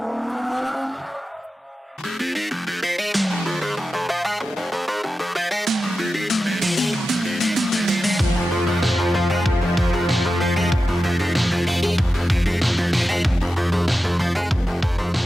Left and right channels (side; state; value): both; normal; correlation 0.92